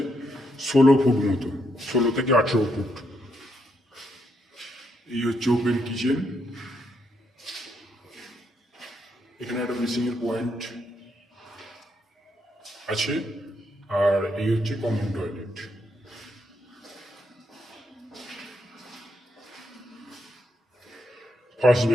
16 ফুট মতো, 16 থেকে 18 ফুট। এই হচ্ছে ওপেন কিচেন। এখানে একটা বেসিংয়ের পয়েন্ট আছে, আর এই হচ্ছে common toilet. First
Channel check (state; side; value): normal; both; correlation 0.78